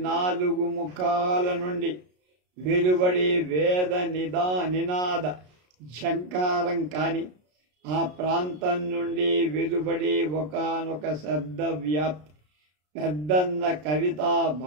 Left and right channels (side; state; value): left; late; 33 ms